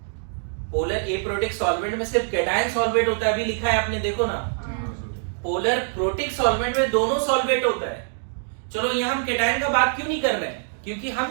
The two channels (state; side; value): silent; left; digital silence